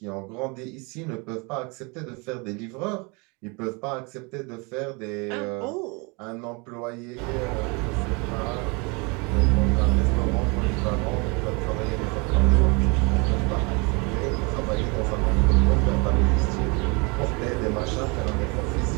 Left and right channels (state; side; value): quieter; left; 29.9 dB